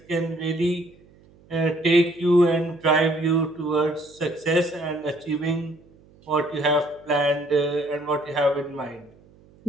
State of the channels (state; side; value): noise; right; hum, 28 dB below the sound